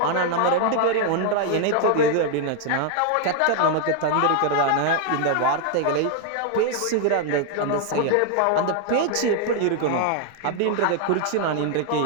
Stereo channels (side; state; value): both; different; correlation 0.00